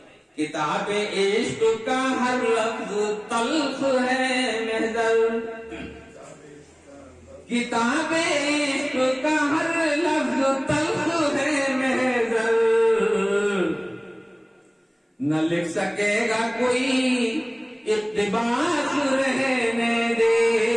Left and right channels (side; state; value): both; identical; correlation 1.00